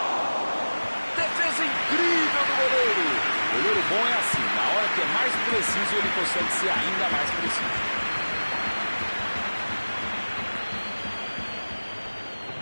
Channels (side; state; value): both; inverted; correlation -1.00